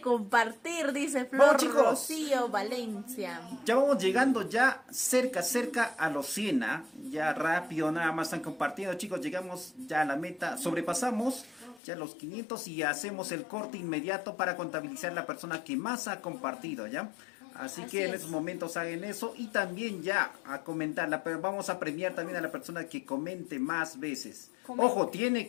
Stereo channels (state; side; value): drops out; right; at 11.8 s